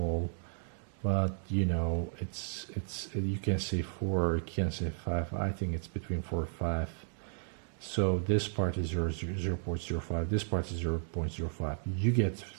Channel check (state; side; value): silent; left; 55 dB below the other